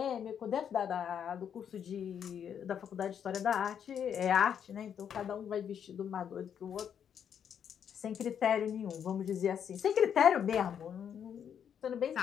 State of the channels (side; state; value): right; quieter; 8.3 dB